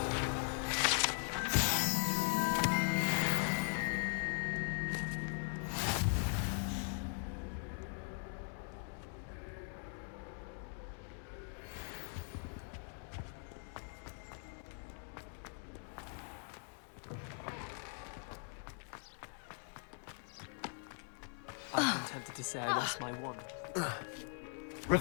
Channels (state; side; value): silent; right; 51 dB below the other